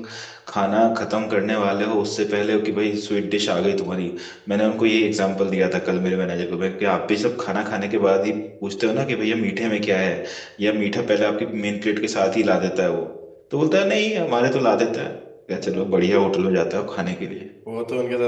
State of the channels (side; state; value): both; identical; correlation 1.00